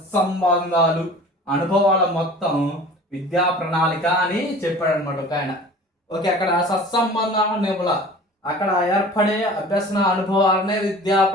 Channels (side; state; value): both; normal; correlation 0.42